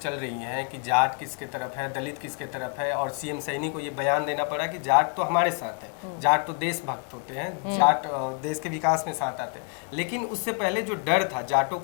रही हैं कि जाट किसके तरफ है, दलित किसके तरफ है, और सीएम सैनी को ये बयान देना पड़ा कि जाट तो हमारे साथ है, जाट तो देशभक्त होते हैं, जाट देश के विकास में साथ आते हैं। लेकिन उससे पहले जो डर था जाटों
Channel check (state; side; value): quieter; right; 36.8 dB